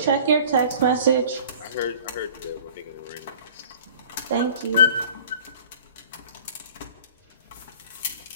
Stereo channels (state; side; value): inverted; both; correlation -0.47